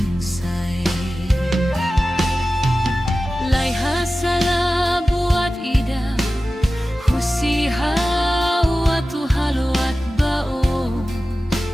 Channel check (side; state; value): both; normal; correlation 0.95